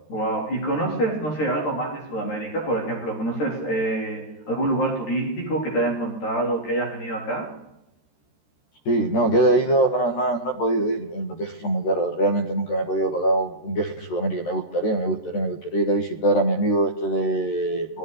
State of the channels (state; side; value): late; right; 13 ms